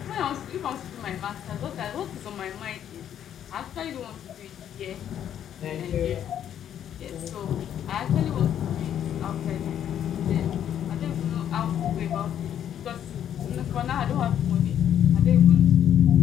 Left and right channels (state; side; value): quieter; right; 9.9 dB